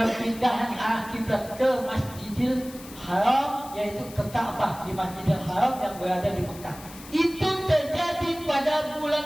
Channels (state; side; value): noise; left; hiss, 17 dB below the sound